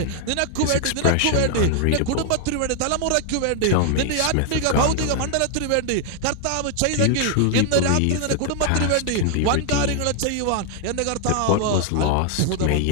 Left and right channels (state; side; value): different; both; correlation 0.00